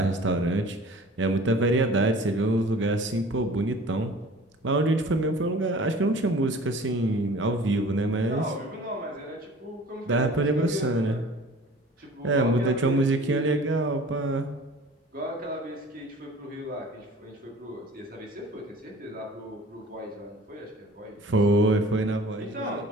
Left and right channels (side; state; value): both; normal; correlation 0.46